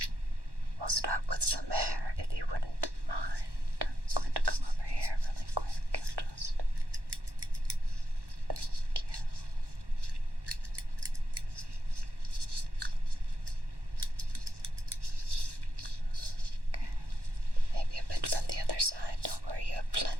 We'll start with some hair, if you wouldn't mind. I'm going to come over here really quick and just... Thank you. Okay. Maybe a bit from the other side. Don't worry, you have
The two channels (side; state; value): left; late; 1.1 ms